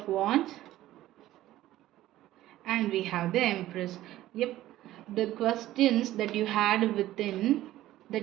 Wands and we have the Empress. Yep, the questions that you had within,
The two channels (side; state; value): left; quieter; 14.8 dB